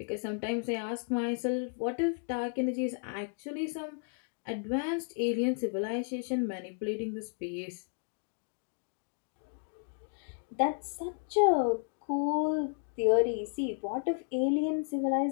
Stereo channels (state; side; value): silent; right; 56 dB below the other